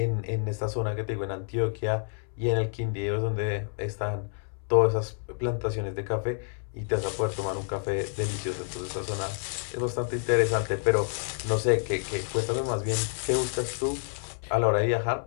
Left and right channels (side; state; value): right; silent; 59 dB below the other